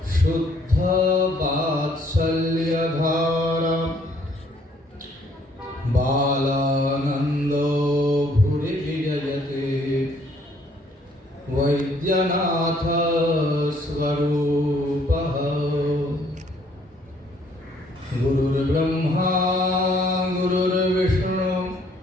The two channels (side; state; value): both; normal; correlation 0.64